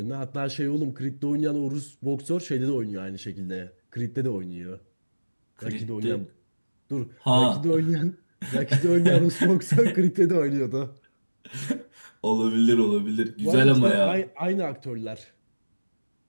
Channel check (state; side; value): inverted; both; correlation -1.00